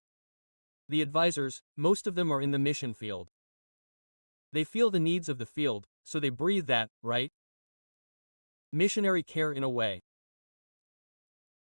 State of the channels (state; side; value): inverted; both; correlation -1.00